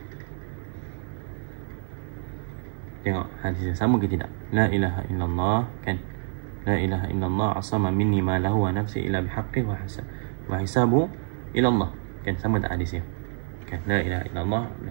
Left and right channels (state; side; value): silent; left; digital silence